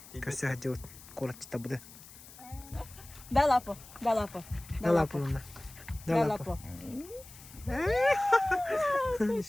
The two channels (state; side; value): noise; left; hiss, 19 dB below the sound